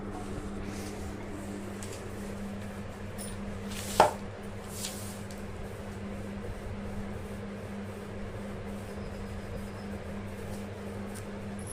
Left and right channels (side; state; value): both; identical; correlation 1.00